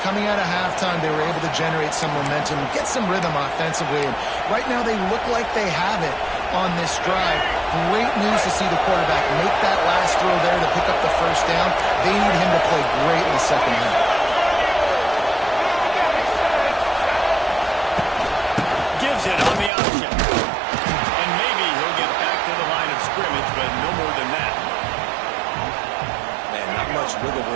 out of halftime. They were able to generate some momentum, get some rhythm offensively, and right now they look like they have it on this drive. Great news to see the quarterback make that last throw there to pick up the first down. They need him to play great in the second half. Gives it on the option. And maybe he'll get back to the line of scrimmage, but no more than that. Man, not much wiggle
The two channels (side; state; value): left; drops out; at 19.7 s